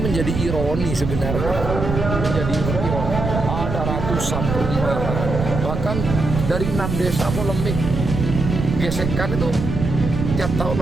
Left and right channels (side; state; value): right; noise; rumble, 4 dB below the sound